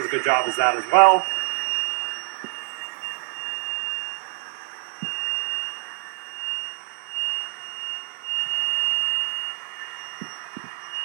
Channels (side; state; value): left; silent; digital silence